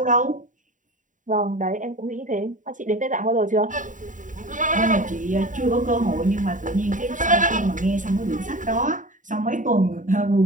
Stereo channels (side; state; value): left; late; 0.37 ms